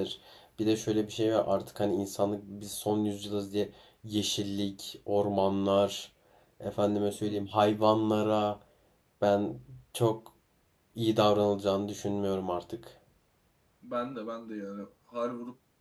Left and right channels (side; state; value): both; identical; correlation 1.00